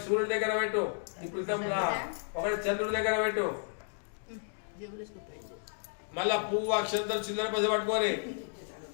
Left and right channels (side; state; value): right; silent; digital silence